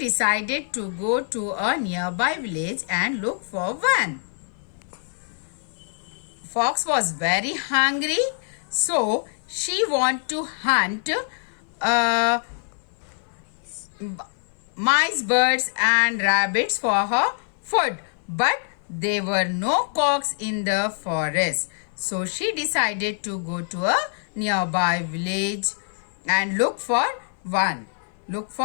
to go to a nearby village and look for one. Fox was very hungry, so she wanted to hunt mice, birds and rabbits for her food, but there were no cocks in the forest. So she decided to go to a nearby village and look for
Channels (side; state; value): right; silent; 58 dB below the other